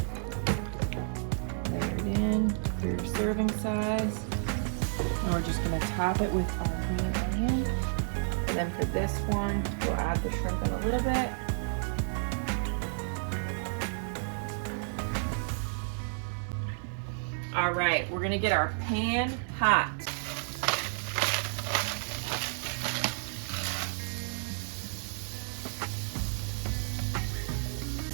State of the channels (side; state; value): left; silent; digital silence